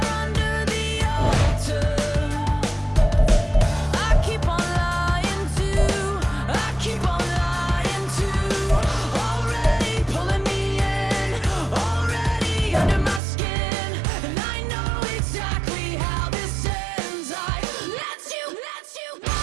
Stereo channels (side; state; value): left; drops out; at 13.2 s